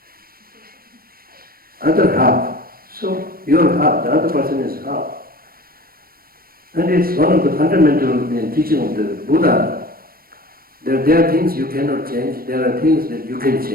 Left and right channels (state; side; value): late; left; 0.43 ms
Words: Other half. So your half, the other person is half. And it's one of the fundamental teaching of the Buddha. There are things you cannot change, there are things that you can